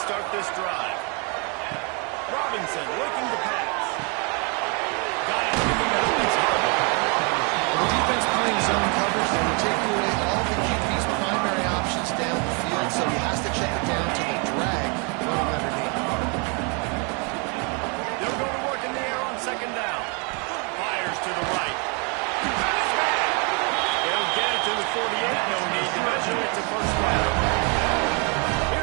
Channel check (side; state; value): left; quieter; 34.3 dB